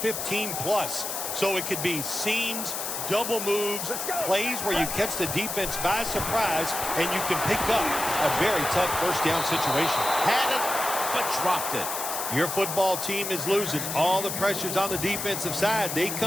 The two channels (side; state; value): left; noise; hiss, 4 dB below the sound